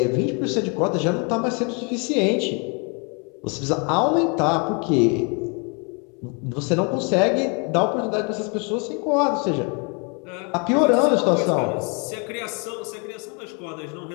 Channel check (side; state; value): right; quieter; 34.3 dB